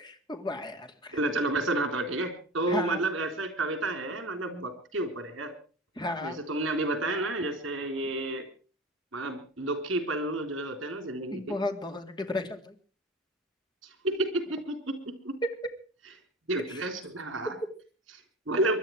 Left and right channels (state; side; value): normal; both; correlation 0.33